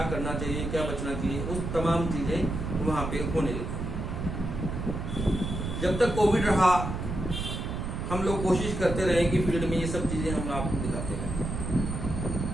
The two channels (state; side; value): noise; right; rumble, 4 dB below the sound